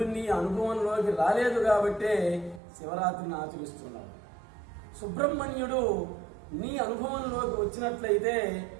నీ అనుభవంలోకి రాలేదు కాబట్టే శివరాత్రిని ఆచరిస్తున్నాడు. సుబ్రహ్మణ్యుడు నీ అనుభవంలోకి వచ్చినట్లయితే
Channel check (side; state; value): left; drops out; at 2.6 s